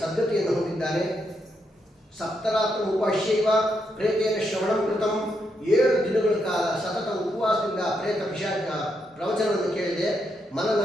ಸದ್ಗತಿಯನ್ನು ಹೊಂದಿದ್ದಾನೆ. ಸಪ್ತರಾತ್ರ ಉಪಾಶ್ಯೈವ ಪ್ರೇತೇನ ಶ್ರವಣಂ ಕೃತಂ, 7 ದಿನಗಳ ಕಾಲ ಸತತ ಉಪವಾಸದಿಂದ ಪ್ರೇತ ಪಿಶಾಚ ಪ್ರವಚನವನ್ನು ಕೇಳಿದೆ.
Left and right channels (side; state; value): both; normal; correlation 0.80